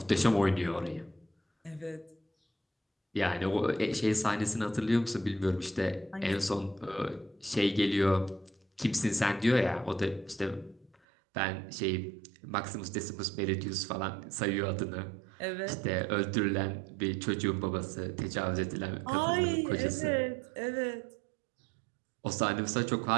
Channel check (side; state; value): left; drops out; at 11.0 s